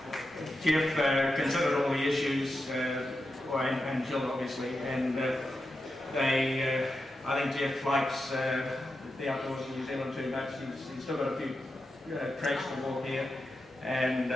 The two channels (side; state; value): both; normal; correlation 0.89